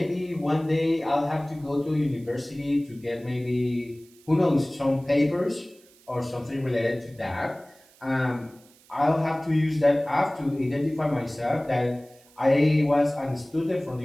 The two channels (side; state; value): right; noise; hiss, 28 dB below the sound